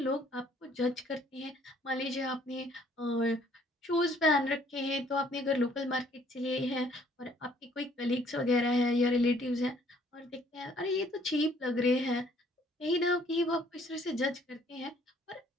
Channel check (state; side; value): normal; both; correlation 0.61